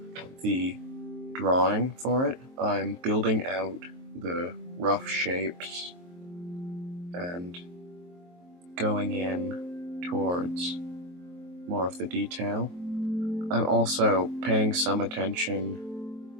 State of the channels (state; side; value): late; left; 23 ms